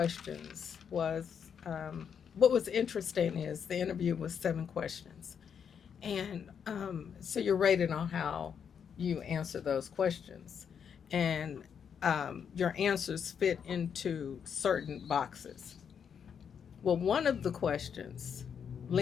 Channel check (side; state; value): right; quieter; 7.4 dB